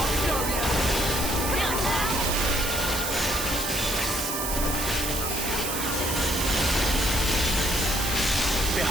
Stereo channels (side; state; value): right; noise; hiss, 2 dB below the sound